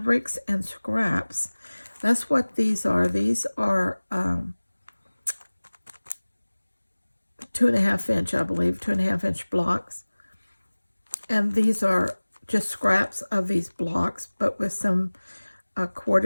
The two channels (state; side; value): inverted; both; correlation -1.00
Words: and scraps. That's what these are. These are 2.5 inch, I believe, 2.5 inch blocks. And these are just scraps of these blocks, but with some